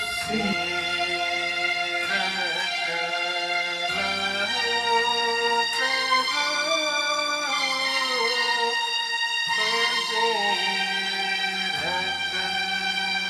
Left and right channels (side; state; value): both; identical; correlation 1.00